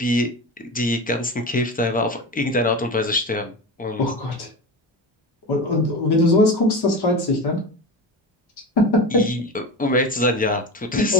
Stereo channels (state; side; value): normal; both; correlation 0.26